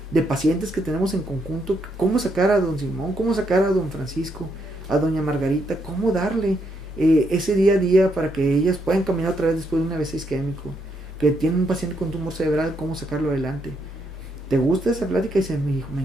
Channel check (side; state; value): both; normal; correlation 0.77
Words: de pacientes que tenemos en conjunto, cómo sacar a don Simón, cómo sacar a don Francisco, a doña Margarita, cómo darle ese día a día para que ellas puedan caminar otra vez después de un AVC isquémico, que tiene un paciente con tumor cerebral, cómo sacarlo adelante. ¿Te gusta esa plática? Y dice mi hijo, me